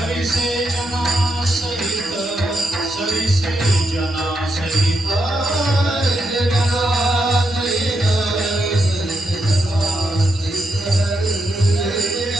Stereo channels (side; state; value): both; normal; correlation 0.82